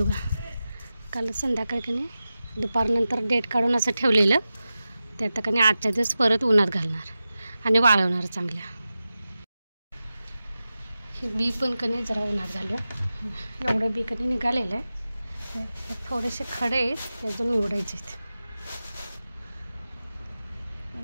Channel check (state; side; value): inverted; both; correlation -0.94